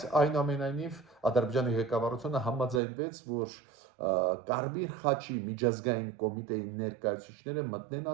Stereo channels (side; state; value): left; drops out; at 2.8 s